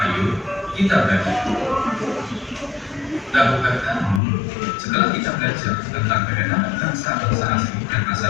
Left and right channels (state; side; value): drops out; right; at 4.2 s